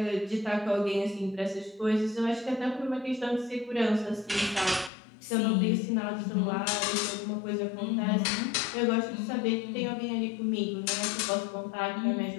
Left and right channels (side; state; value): right; drops out; at 4.9 s